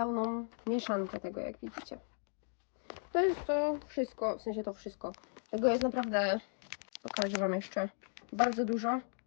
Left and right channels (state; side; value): silent; right; 53 dB below the other